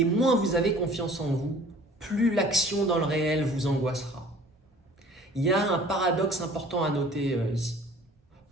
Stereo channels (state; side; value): normal; both; correlation 0.49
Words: moins vous avez confiance en vous, plus l'action dans le réel vous angoissera. Il y a un paradoxe important à noter ici.